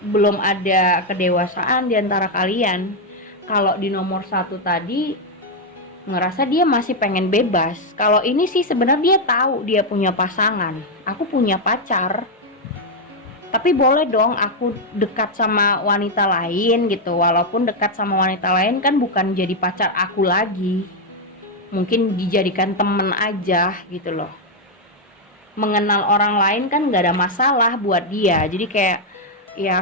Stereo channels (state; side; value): normal; both; correlation 0.01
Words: ada kedewasaan di antara kalian. Kalau di nomor 1 tadi ngerasa dia masih pengen bebas. Kalau ini sih sebenarnya dia tahu dia punya pasangan. Aku punya pacar, tapi boleh dong aku dekat sama wanita lain gitu. Walaupun dekat sama wanita lain kan bukan jadi pacar aku lagi, mungkin dijadikan temen aja gitu loh. Mengenal orang lain kan gak ada masalah buat dia. Jadi kayak